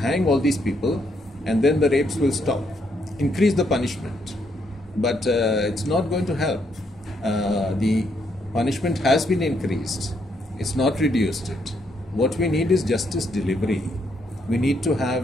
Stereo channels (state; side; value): normal; both; correlation 0.74